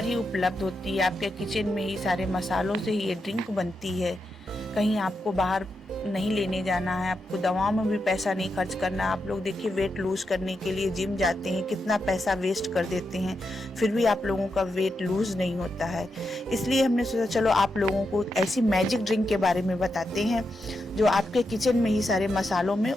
ही उपलब्ध होती है। आपके किचन में ही सारे मसालों से ही ये ड्रिंक बनती है। कहीं आपको बाहर नहीं लेने जाना है, आपको दवाओं में भी पैसा नहीं खर्च करना। आप लोग देखिए, वेट लूज करने के लिए जिम जाते हैं, कितना पैसा वेस्ट कर देते हैं, फिर भी आप लोगों का वेट लूज नहीं होता है। इसलिए हमने सोचा चलो आप लोगों को ऐसी मैजिक ड्रिंक के बारे में बताते हैं जो आपके किचन में ही सारे मसालों में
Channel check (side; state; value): both; normal; correlation 0.85